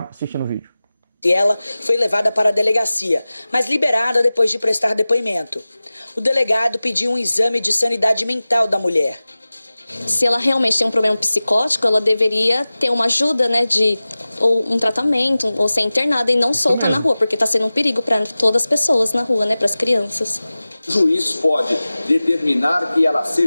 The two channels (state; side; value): inverted; both; correlation -0.97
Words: assistindo o vídeo. Ela foi levada para a delegacia, mas liberada depois de prestar depoimento. O delegado pediu um exame de sanidade mental da mulher. Se ela realmente tem um problema psicótico, ela deveria ter uma ajuda, né, ou um tratamento, ou ser internada e não solta na rua, porque está sendo um perigo para todas as pessoas na rua, né, para as crianças. O juiz pode determinar que ela